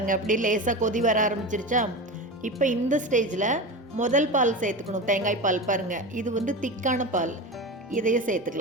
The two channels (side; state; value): both; normal; correlation 0.25